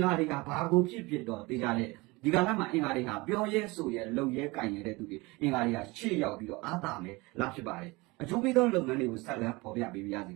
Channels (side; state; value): left; quieter; 23.8 dB